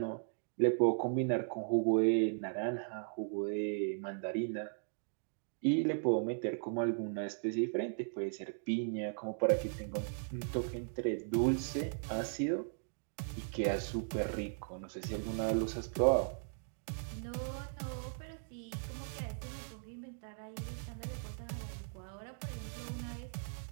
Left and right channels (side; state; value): left; silent; digital silence